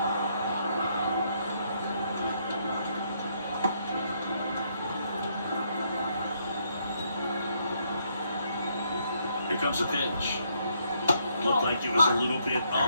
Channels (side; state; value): both; inverted; correlation -0.72